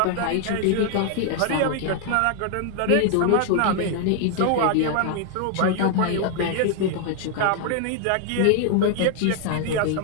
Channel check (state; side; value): different; both; correlation 0.00